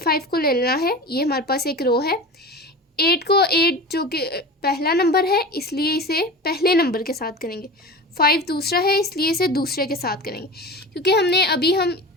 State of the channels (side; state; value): both; normal; correlation 0.32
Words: को ले लेना है। ये हमारे पास एक रो है। 8 जो कि पहला नंबर है इसलिए इसे पहले नंबर के साथ करेंगे। 5 दूसरा है इसलिए इसे दूसरे के साथ करेंगे, क्योंकि हम